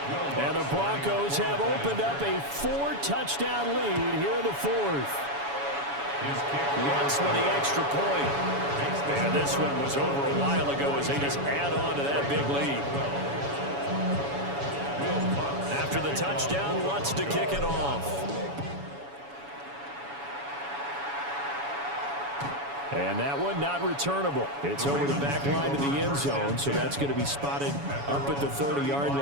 And the Broncos have opened up a 4-touchdown lead here in the 4th. Lutz with the extra point. And this one was over a while ago as they just add on to that big lead. After the touchdown, Lutz to kick it off. And that one not returnable. It's over the back line to the end zone, so that's going to be spotted up at the 30-yard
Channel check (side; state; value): left; late; 7.1 ms